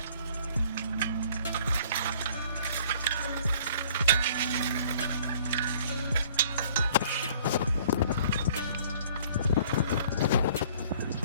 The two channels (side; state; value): both; inverted; correlation -0.54